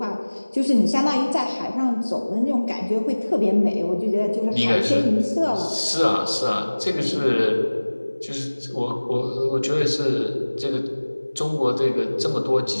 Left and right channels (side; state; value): both; inverted; correlation -1.00